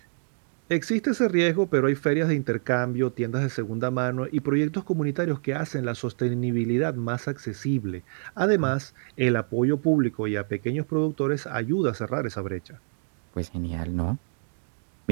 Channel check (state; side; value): silent; left; digital silence